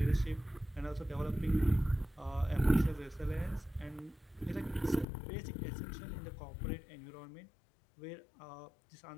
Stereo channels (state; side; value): drops out; right; at 5.1 s